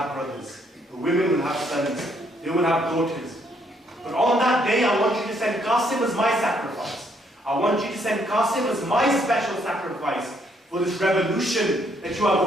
brothers. The women will have sons. They will have daughters. But on that day, I want you to send Qasim as my sacrifice. I want you to send Qasim as my special sacrifice for this revolution that you are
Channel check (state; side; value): normal; both; correlation 0.70